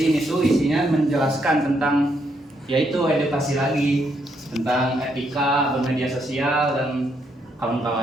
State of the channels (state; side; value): normal; both; correlation 0.76